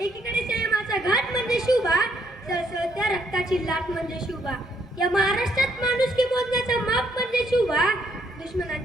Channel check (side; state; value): both; normal; correlation 0.71